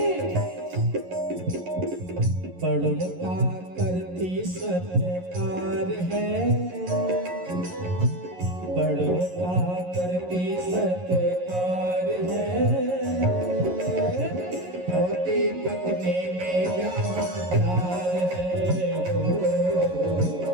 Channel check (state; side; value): late; left; 11 ms